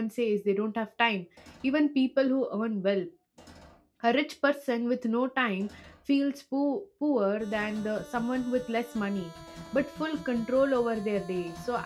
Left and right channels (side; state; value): both; identical; correlation 1.00